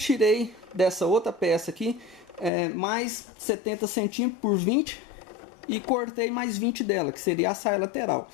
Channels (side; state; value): right; drops out; at 2.5 s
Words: dessa outra peça aqui mais 70 centímetros por 20 e cortei mais 20 dela, que seria a saia lateral.